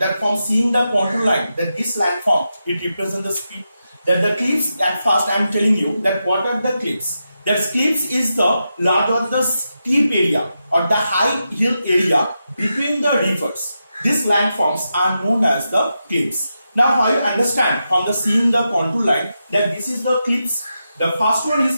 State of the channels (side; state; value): both; inverted; correlation -0.88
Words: from seeing the contour line that this landform it represents the speed that the cliffs. At first I am telling you that what are the cliffs. That cliffs is the large or the steep area or the high hill area between the rivers. These landforms are known as the cliffs. Now how you understand from the seeing the contour line that this is the cliffs. The first one